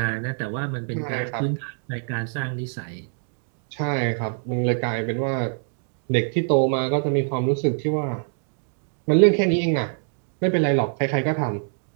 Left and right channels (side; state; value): left; silent; 56 dB below the other